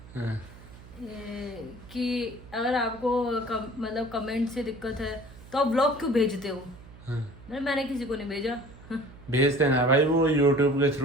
हाँ। कि अगर आपको मतलब कमेंट से दिक्कत है तो आप ब्लॉग क्यों भेजते हो। हाँ। मैंने किसी को नहीं भेजा। भेजते हैं भाई, वो यूट्यूब के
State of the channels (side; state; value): right; noise; hum, 19 dB below the sound